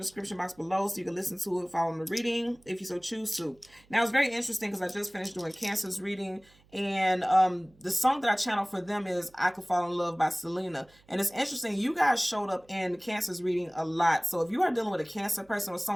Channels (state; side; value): noise; right; hum, 30 dB below the sound